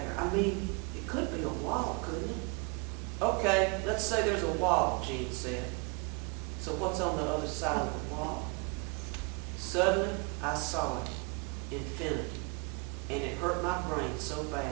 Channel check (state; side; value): quieter; left; 31.8 dB